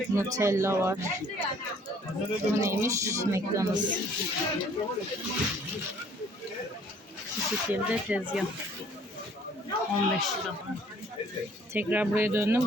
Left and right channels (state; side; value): normal; both; correlation 0.58